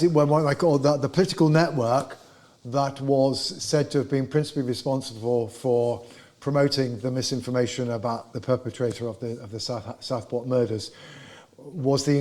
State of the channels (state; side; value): identical; both; correlation 1.00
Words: it were, what I call the political network that was said to have been principally responsible for promoting the misinformation about the perpetrator of the Southport murders was the